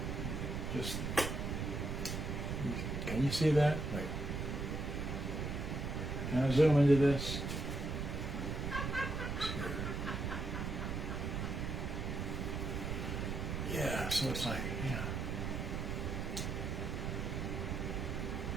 Just, can you see that? Wait. Can I zoom into this? Yeah, so it's like, yeah.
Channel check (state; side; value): noise; right; rumble, 2 dB below the sound